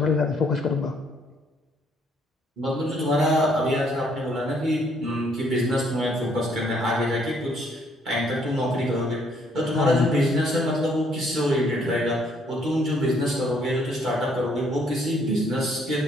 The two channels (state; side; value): normal; both; correlation 0.67